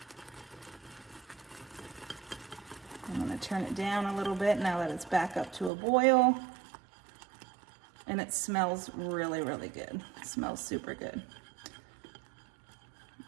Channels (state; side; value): drops out; left; at 5.7 s